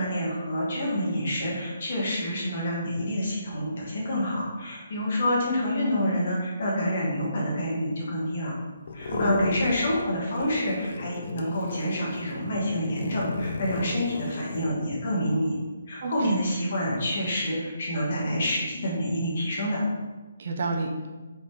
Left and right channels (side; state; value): both; inverted; correlation -0.75